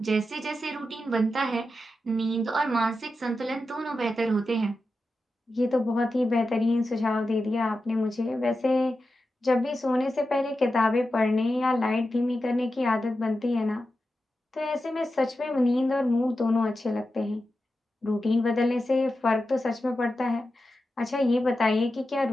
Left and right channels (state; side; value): normal; both; correlation 0.91